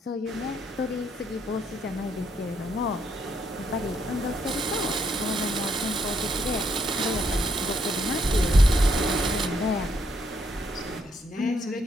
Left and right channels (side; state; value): both; normal; correlation 0.74